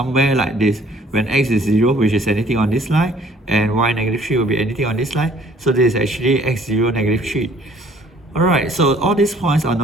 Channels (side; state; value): both; normal; correlation 0.58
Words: like this. When x is 0, which is anything on this line, and y -3 will be anything on this line. So this is actually x0, -3. Alright, so all these points are